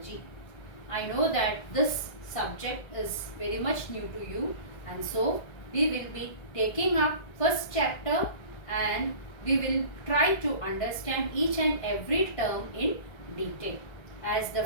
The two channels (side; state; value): right; late; 1.7 ms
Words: I know that this subject is very much new to you, and so we will be taking up first chapter and we will try to understand each and every term in detail. As the